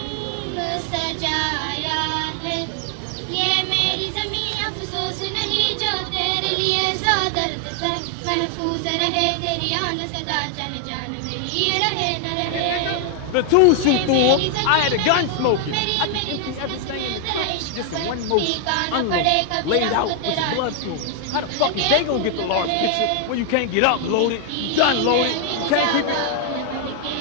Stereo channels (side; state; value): both; different; correlation 0.00